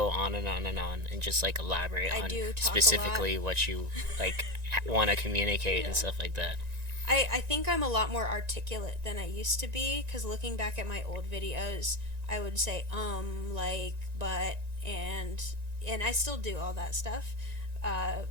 on and on and on and just like elaborate I on do talk a lot. specifically what you like want to communicate and Yeah. stuff like that. I think I'm a lot more articulate than I used to be because looking back at my old videos, I would say like, but, and I still do all that stuff. Uh,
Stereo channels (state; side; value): late; left; 1.9 ms